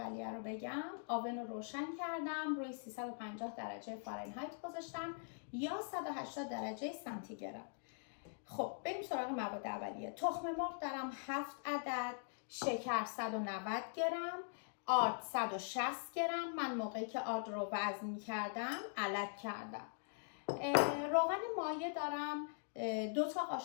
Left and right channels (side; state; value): right; silent; digital silence